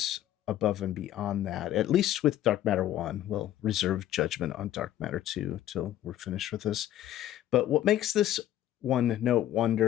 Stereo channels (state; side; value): quieter; right; 12.6 dB